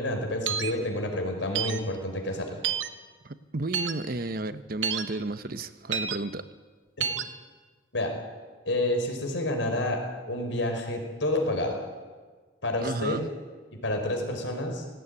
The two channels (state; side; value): normal; both; correlation 0.10